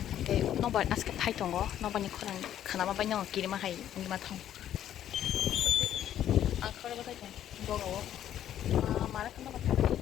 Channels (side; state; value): right; quieter; 11.1 dB